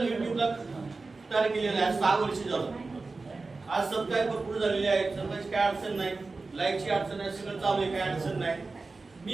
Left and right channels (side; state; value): left; quieter; 3.8 dB